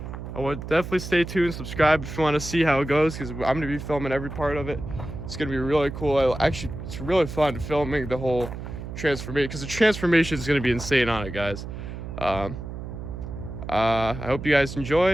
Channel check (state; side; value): noise; right; hum, 9 dB below the sound